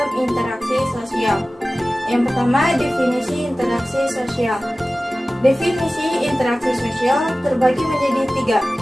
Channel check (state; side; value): normal; both; correlation 0.97